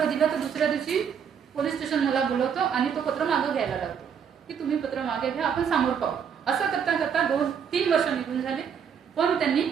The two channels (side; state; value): left; quieter; 7.4 dB